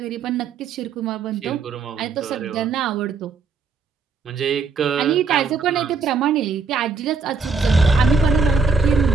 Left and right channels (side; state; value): left; quieter; 4.8 dB